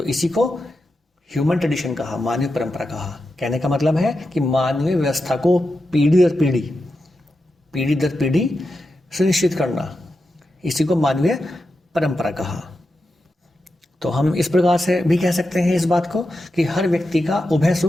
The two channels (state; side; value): normal; both; correlation 0.89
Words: इसी को ह्यूमन ट्रेडिशन कहा, मानवीय परंपरा कहा। कहने का मतलब है कि मानवीय व्यवस्था को पीढ़ी दर पीढ़ी, पीढ़ी दर पीढ़ी सुनिश्चित करना, इसी को मानवीय परंपरा कहा। तो हम इस प्रकार से भी कह सकते हैं इस बात को कि हर व्यक्ति का उभय